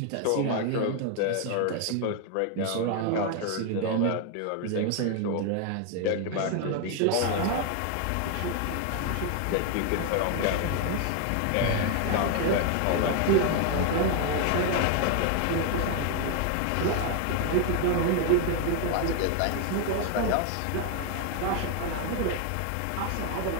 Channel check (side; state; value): both; different; correlation 0.01